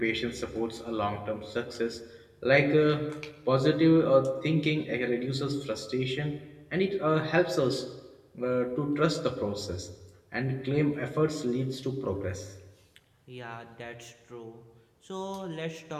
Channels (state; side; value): identical; both; correlation 1.00